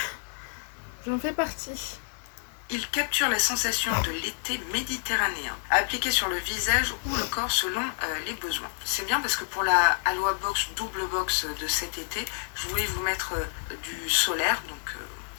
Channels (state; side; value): silent; right; 59 dB below the other